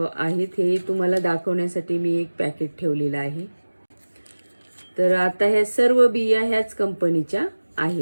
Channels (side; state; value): both; inverted; correlation -1.00